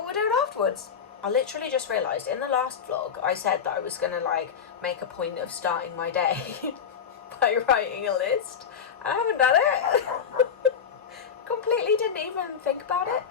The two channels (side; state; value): right; quieter; 7.2 dB